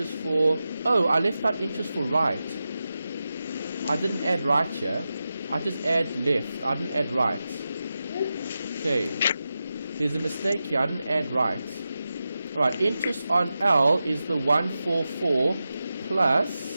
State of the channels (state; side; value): inverted; both; correlation -0.91